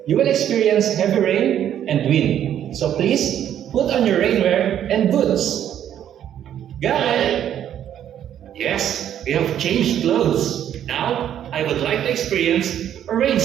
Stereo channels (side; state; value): left; quieter; 10.3 dB